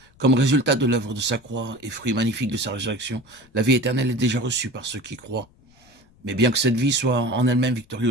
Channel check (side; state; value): left; noise; rumble, 30 dB below the sound